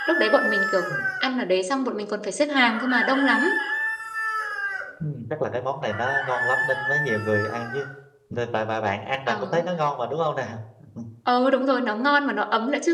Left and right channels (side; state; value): both; identical; correlation 1.00